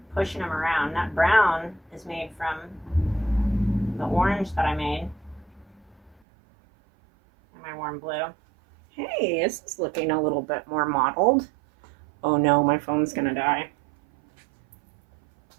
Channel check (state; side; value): drops out; left; at 6.2 s